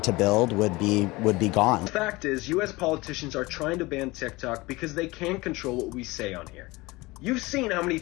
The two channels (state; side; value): quieter; right; 22.1 dB